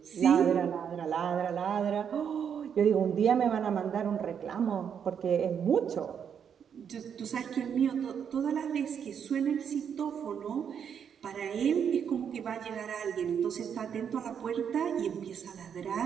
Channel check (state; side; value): quieter; left; 7.8 dB